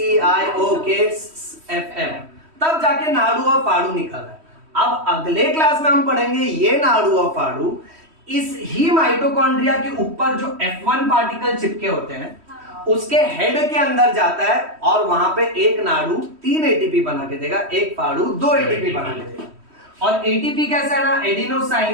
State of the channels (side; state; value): left; late; 3.1 ms